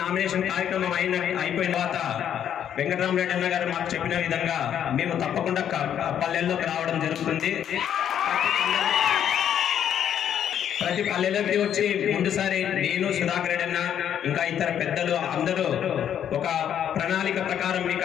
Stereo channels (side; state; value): right; quieter; 9.5 dB